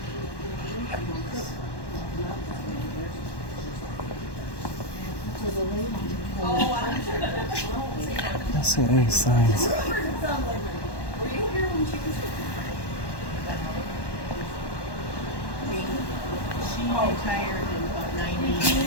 I don't see any signs.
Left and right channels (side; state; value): right; late; 1.1 ms